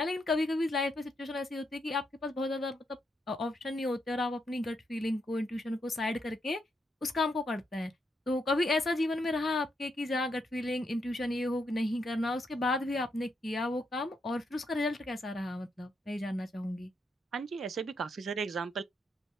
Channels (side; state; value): both; normal; correlation 0.80